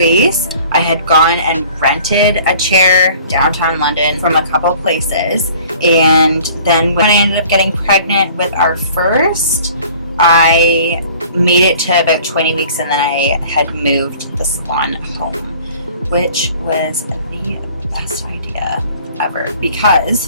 I had gone and rented a chair downtown London from a couple places, and then when I ended up getting pregnant with our first, I made it to about 20 weeks, and then I had moved the salon home, which was the best idea ever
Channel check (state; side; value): inverted; both; correlation -0.50